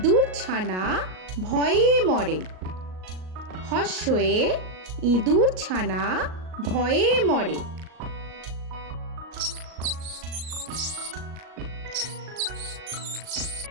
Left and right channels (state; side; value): late; left; 38 ms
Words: ছানা ভয়ে মরে। হর্ষয়ে ইঁদুর ছানা ভয়ে মরে।